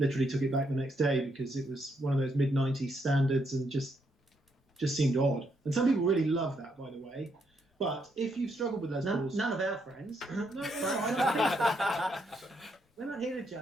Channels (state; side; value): normal; both; correlation 0.76